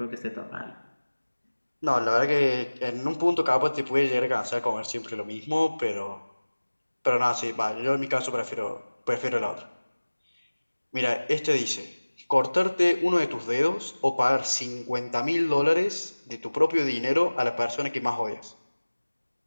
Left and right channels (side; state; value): both; inverted; correlation -1.00